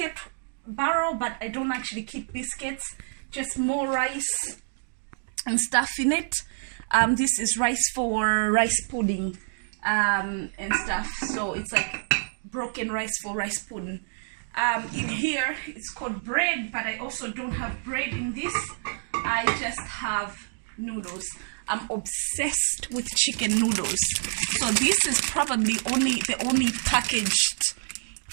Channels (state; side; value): silent; left; digital silence